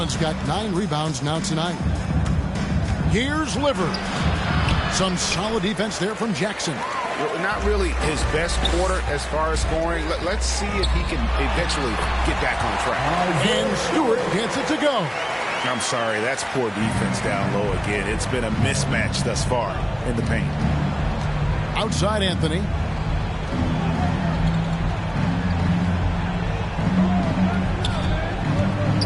got 9 rebounds now tonight. Here's Liver. Some solid defense there from Jackson. Well, not really his best quarter as far as scoring. Let's see if he can eventually get back on track. And Stewart gets it to go. I'm sorry, that's poor defense down low again. It's been a mismatch thus far in the paint. Outside Anthony.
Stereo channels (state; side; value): identical; both; correlation 1.00